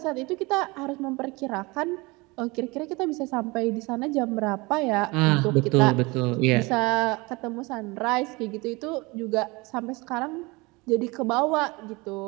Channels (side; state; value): left; quieter; 24.7 dB